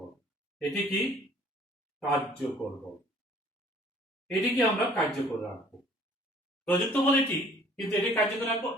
এটি কি? কার্যকর বল। এটিকে আমরা কার্যকর রাখবো। প্রযুক্ত বল এটি, কিন্তু এটি কার্যকর রাখবো,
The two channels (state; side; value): normal; both; correlation 0.55